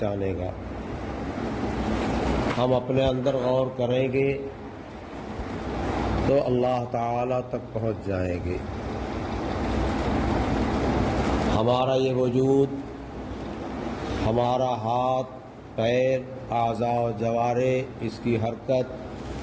گا۔ ہم اپنے اندر غور کریں گے تو اللہ تعالیٰ تک پہنچ جائیں گے۔ ہمارا یہ وجود، ہمارا ہاتھ، پیر، اعضاء و جوارح، اس کی حرکت،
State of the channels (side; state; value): both; identical; correlation 1.00